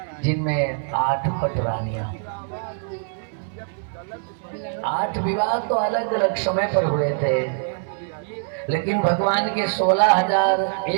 जिनमें 8 पट रानियां। 8 विवाह तो अलग अलग समय पर हुए थे, लेकिन भगवान के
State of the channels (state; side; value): silent; left; digital silence